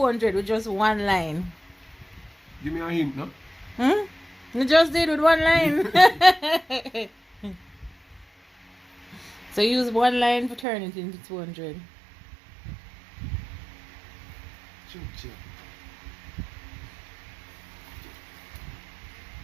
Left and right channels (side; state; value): left; drops out; at 10.7 s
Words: with just one line. Give me a hint, no? You just did with one line. So use one line to turn it into 200. Check.